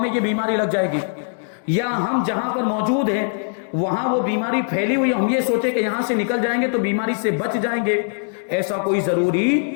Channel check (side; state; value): right; silent; digital silence